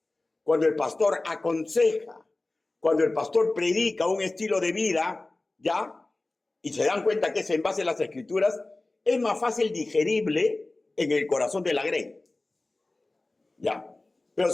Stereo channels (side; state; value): right; quieter; 3.0 dB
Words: cuando el pastor aconseja, cuando el pastor predica un estilo de vida, ¿ya? Y se dan cuenta que es en base a las escrituras, es más fácil digerible en el corazón de la grey. ¿Ya? Pero